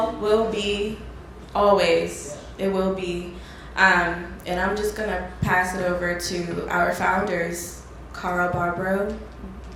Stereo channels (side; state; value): both; identical; correlation 1.00